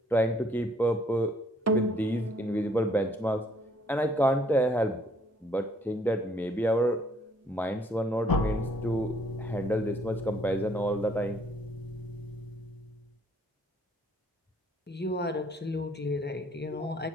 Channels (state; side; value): normal; both; correlation 0.63